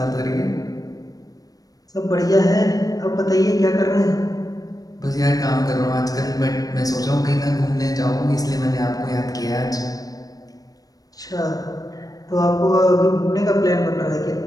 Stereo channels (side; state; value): right; late; 0.18 ms